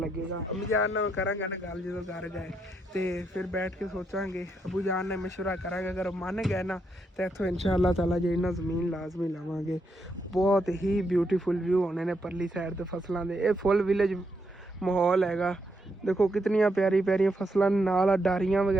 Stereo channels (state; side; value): normal; both; correlation 0.79